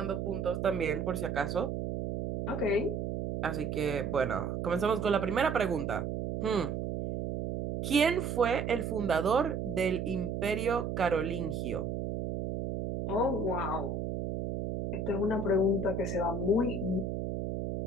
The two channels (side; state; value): right; noise; hum, 3 dB below the sound